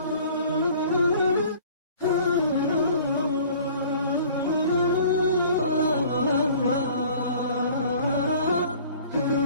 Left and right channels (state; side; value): inverted; both; correlation -0.50